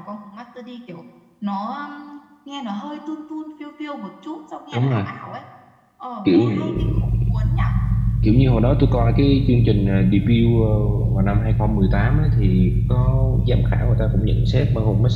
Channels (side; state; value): both; identical; correlation 1.00